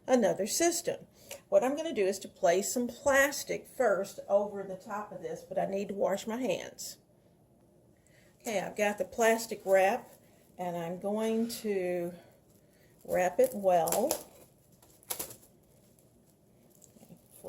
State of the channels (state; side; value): identical; both; correlation 1.00